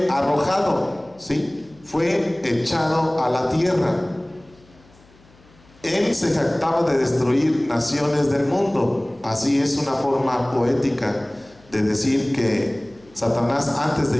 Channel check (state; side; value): noise; left; hum, 28 dB below the sound